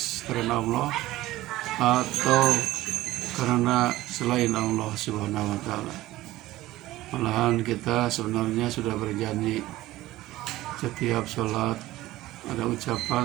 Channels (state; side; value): quieter; left; 16.7 dB